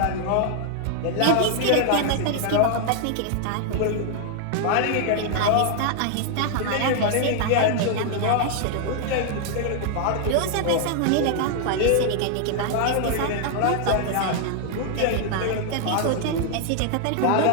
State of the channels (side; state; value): both; different; correlation 0.00